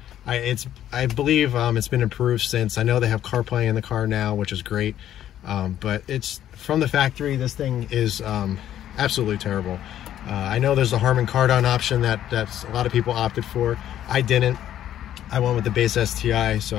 I believe it's been improved since. I know they have CarPlay in the car now, which is great. But it's from the factory, this thing is absolutely terrible. I know there's a Harman Kardon option that's a lot of people opted for. I didn't. I went with the base STI, so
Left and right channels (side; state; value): right; quieter; 11.4 dB